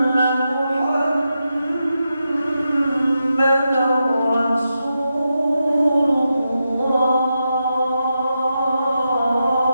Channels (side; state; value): both; inverted; correlation -0.87